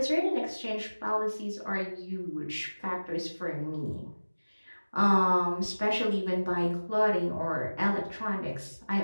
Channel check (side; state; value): both; inverted; correlation -1.00